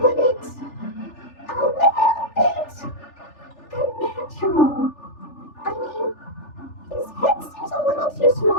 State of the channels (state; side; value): late; right; 3.4 ms